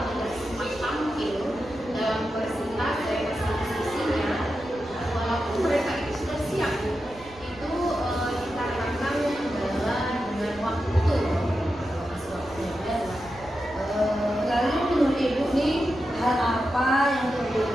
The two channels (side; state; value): right; noise; rumble, 21 dB below the sound